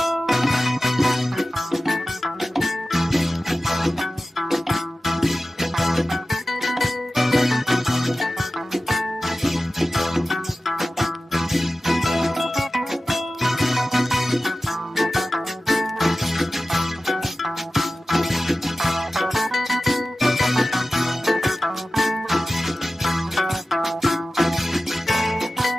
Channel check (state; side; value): normal; both; correlation 0.95